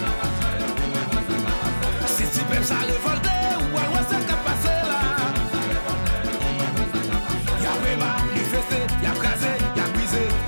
Ça révolté ou alors ça qu'a passé là. Y'a vraiment manifesté, y'a crasé, y'a brisé,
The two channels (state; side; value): inverted; both; correlation -1.00